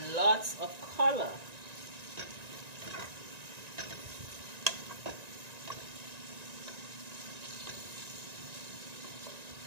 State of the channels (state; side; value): late; left; 1.9 ms